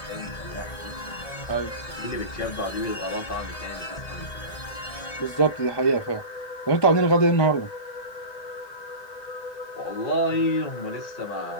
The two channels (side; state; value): right; late; 1.7 ms